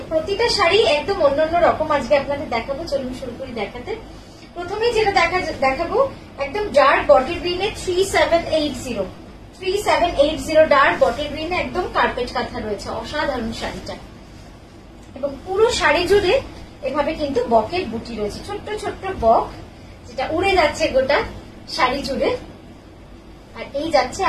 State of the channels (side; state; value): both; identical; correlation 1.00